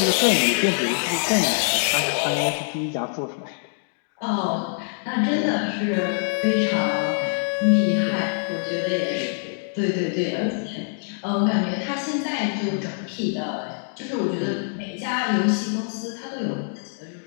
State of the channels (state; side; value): silent; right; digital silence